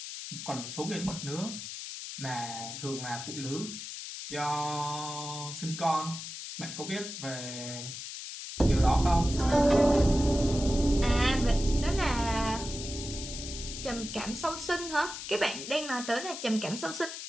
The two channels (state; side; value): noise; left; hiss, 8 dB below the sound